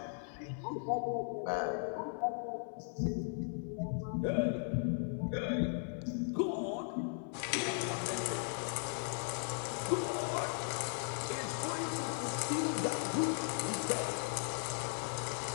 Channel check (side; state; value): right; silent; 53 dB below the other